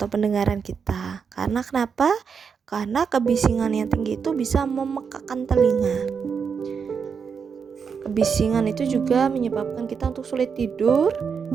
pendengaran kita. Karena kenapa? Karena kebisingan yang tinggi itu bisa memekakkan telinga. Kebisingan itu juga menyebabkan kita untuk sulit tidur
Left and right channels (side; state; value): left; quieter; 6.2 dB